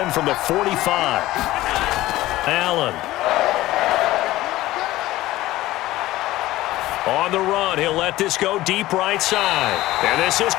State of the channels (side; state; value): right; quieter; 16.7 dB